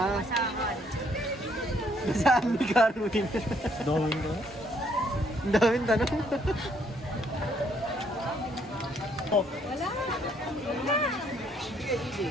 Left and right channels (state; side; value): normal; both; correlation 0.68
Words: Masahan. saan ni Carwin? Dawin ko. Ang daming tanong.